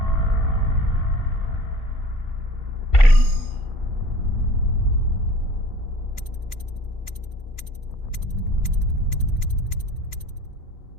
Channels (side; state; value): right; late; 2.8 ms